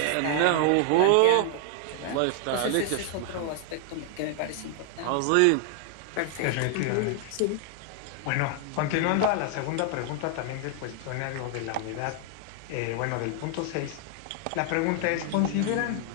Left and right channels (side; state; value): both; different; correlation 0.00